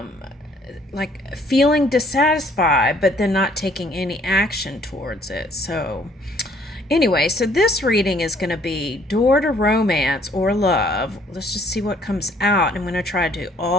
feeling dissatisfied, but then not taking any action towards it. So anyway, so this reading is going to be Door to Romance or Love. Let's just see what comes out. I'm going to try to do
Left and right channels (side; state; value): both; normal; correlation 0.61